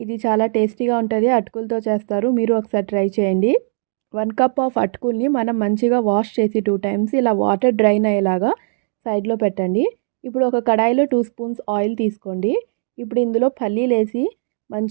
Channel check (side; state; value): left; silent; digital silence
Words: ఇది చాలా టేస్టీగా ఉంటుంది. అటుకులతో చేస్తారు. మీరు ఒకసారి ట్రై చేయండి. 1 కప్ ఆఫ్ అటుకుల్ని మనం మంచిగా వాష్ చేసి 2 టైమ్స్ ఇలా వాటర్ డ్రైన్ అయ్యేలాగా సైడ్లో పెట్టండి. ఇప్పుడు ఒక కడాయిలో 2 స్పూన్స్ ఆయిల్ తీసుకోండి. ఇప్పుడు ఇందులో పల్లీలు వేసి